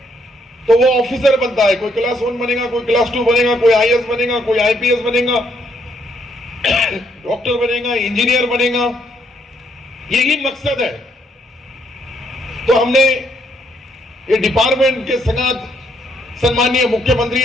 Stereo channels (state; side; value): normal; both; correlation 0.72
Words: तो वो ऑफिसर बनता है. कोई क्लास 1 बनेगा, कोई क्लास 2 बनेगा, कोई IAS बनेगा, कोई IPS बनेगा, डॉक्टर बनेगा, इंजीनियर बनेगा. यही मकसद है. तो हमने ये डिपार्टमेंट के संगात सम्माननीय मुख्यमंत्री